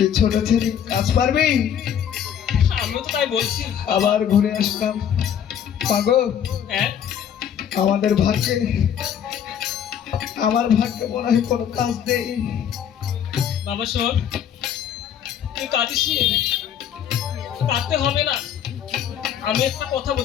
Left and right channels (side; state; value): right; quieter; 9.0 dB